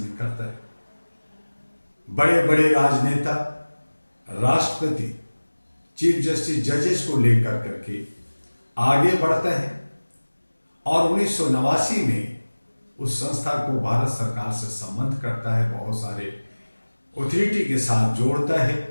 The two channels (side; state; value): both; inverted; correlation -1.00